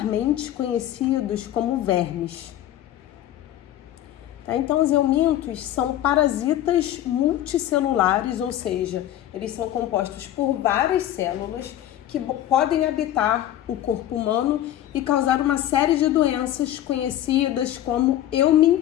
conhecidos como vermes. Então, os eumintos são parasitas multicelulares, ou seja, eles são compostos por várias células que podem habitar o corpo humano e causar uma série de doenças conhecidas como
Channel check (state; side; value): quieter; right; 12.6 dB